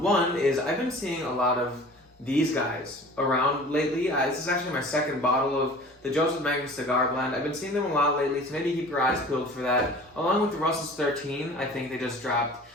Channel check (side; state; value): both; normal; correlation 0.44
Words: is I've been seeing a lot of these guys around lately. This is actually my second bottle of the Joseph Magnus Cigar Blend. I've been seeing them a lot lately, so maybe keep your eyes peeled for that. Along with the Russell's 13, I think they just dropped